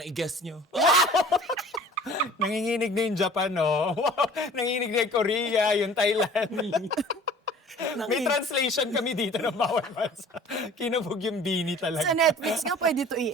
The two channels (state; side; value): normal; both; correlation 0.47